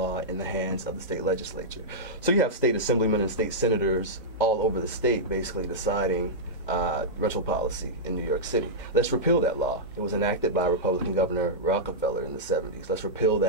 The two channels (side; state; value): both; normal; correlation -0.10